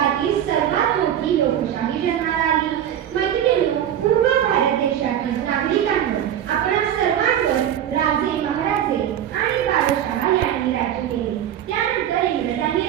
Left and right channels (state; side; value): quieter; left; 10.4 dB